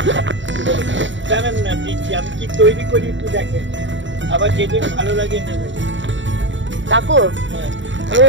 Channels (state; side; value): late; left; 0.54 ms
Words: জানেন না দিচ্ছি আমি কি তৈরি করি একটু দেখেন আবার যেদিন ভালো লাগে নেবেন কাকু আমি